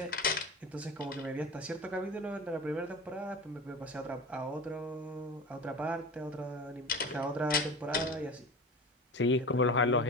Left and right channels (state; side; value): normal; both; correlation 0.31